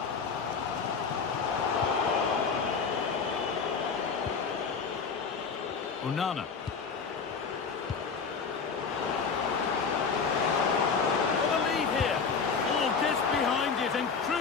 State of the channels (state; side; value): quieter; right; 5.5 dB